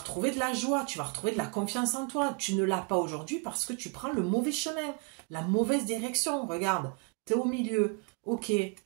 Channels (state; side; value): quieter; left; 34.7 dB